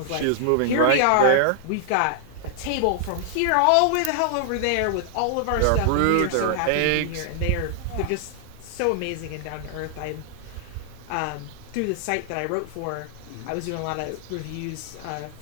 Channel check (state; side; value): different; both; correlation 0.00